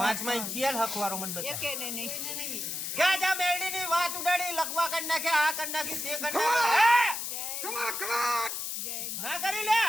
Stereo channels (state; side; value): noise; left; hiss, 4 dB below the sound